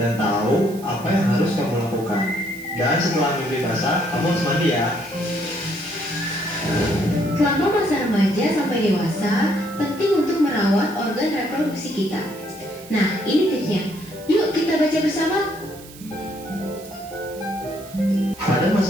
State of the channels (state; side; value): noise; right; hiss, 19 dB below the sound